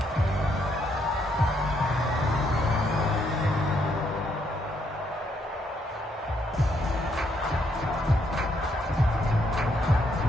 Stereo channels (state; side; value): normal; both; correlation 0.73